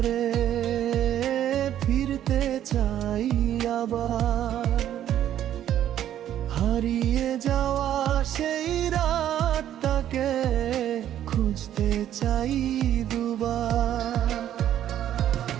ফিরতে চাই আবার, হারিয়ে যাওয়া সেই রাতটাকে খুঁজতে চাই দুবার।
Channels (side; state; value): left; quieter; 11.2 dB